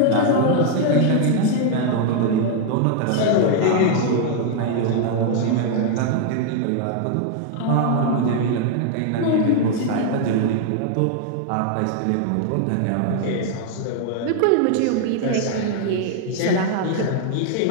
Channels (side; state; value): both; different; correlation 0.00